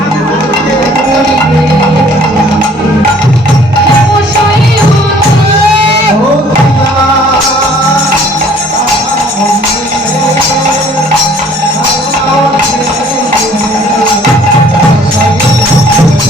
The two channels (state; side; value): normal; both; correlation 0.56